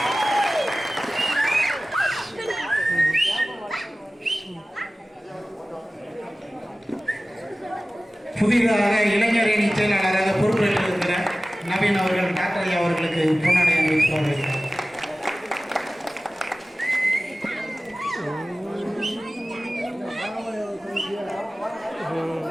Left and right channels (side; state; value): both; normal; correlation 0.97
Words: புதிதாக இளைஞரணி செயலாளராக பொறுப்பேற்றிருக்கிற நவீன் அவர்கள் டாக்டர் ஐயா அவர்களுக்கு பொன்னாடை அணிவித்து வருகிறார்.